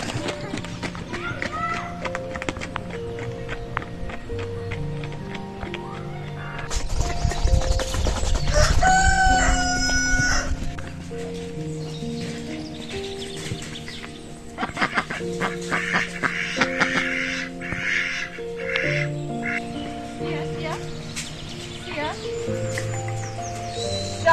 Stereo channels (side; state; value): both; identical; correlation 1.00